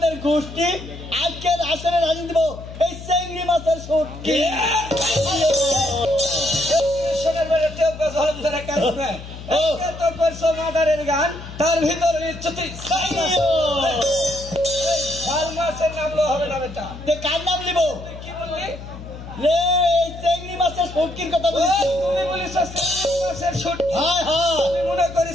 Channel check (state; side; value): noise; left; hum, 13 dB below the sound